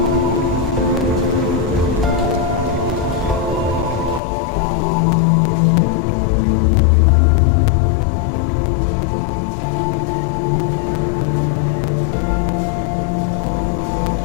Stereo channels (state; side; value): drops out; right; at 4.2 s